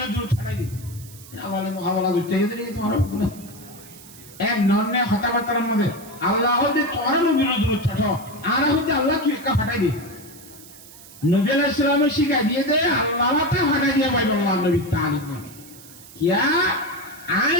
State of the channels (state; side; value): noise; right; hiss, 19 dB below the sound